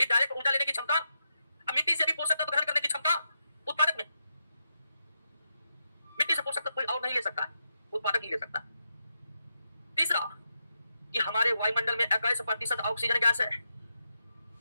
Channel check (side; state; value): both; inverted; correlation -0.84